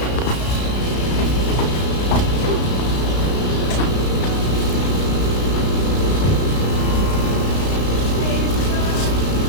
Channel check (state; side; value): late; right; 33 ms